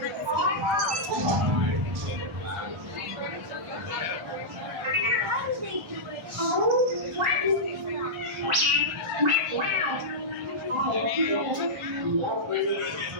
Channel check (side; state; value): left; late; 1.1 ms